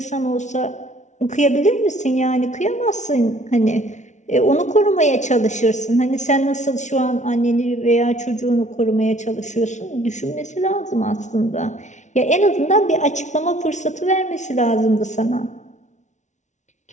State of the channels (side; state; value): right; late; 0.35 ms